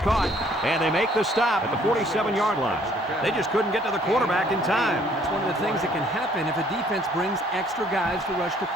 caught. And they make the stop at the 47-yard line. They just couldn't get to the quarterback in time. That's one of the things that can happen if a defense brings extra guys to rush the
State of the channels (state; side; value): normal; both; correlation 0.61